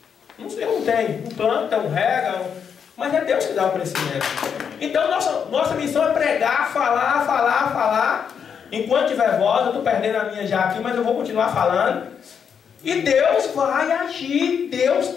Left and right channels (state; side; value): quieter; right; 7.2 dB